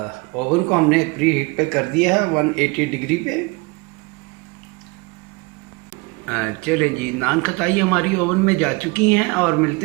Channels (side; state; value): left; quieter; 26.8 dB